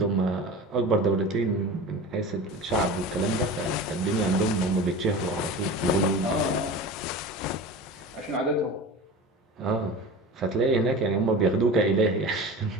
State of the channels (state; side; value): normal; both; correlation 0.33